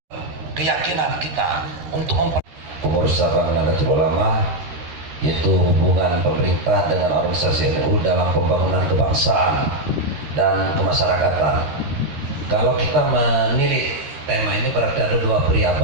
Keyakinan kita untuk pengurus cabang Nahdlatul Ulama, yaitu hubungan pemerintah dengan organisasi NU dalam pembangunan kebangsaan dan kemasyarakatan. Kalau kita menilik tema ini berarti ada dua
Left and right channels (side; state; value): left; late; 13 ms